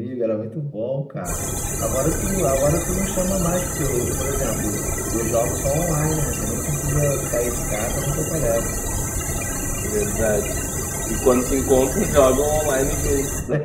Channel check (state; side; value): identical; both; correlation 1.00